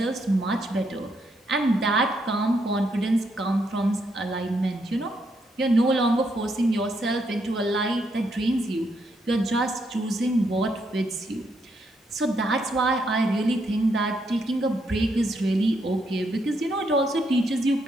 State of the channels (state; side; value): normal; both; correlation 0.77